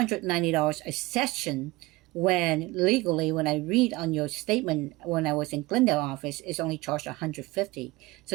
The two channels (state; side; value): quieter; left; 21.1 dB